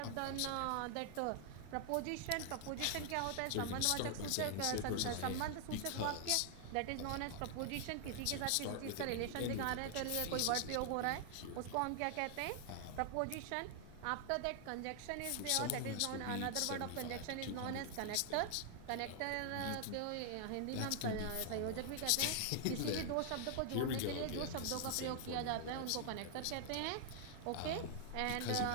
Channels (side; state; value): both; different; correlation 0.00